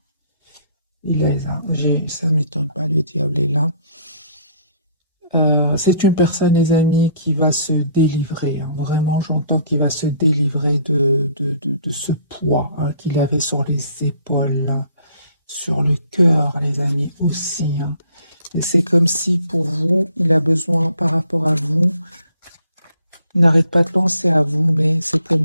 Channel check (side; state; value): both; inverted; correlation -0.60